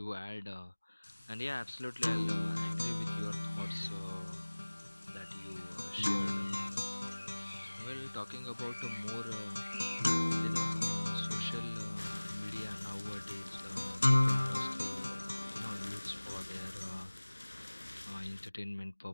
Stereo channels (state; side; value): inverted; both; correlation -1.00